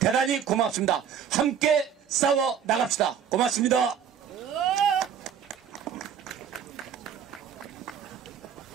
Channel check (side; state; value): left; quieter; 8.2 dB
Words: 고맙습니다. 함께 싸워 나갑시다. 고맙습니다.